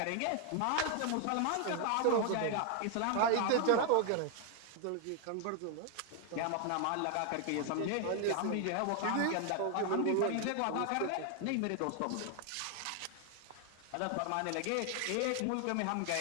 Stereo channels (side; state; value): both; different; correlation 0.00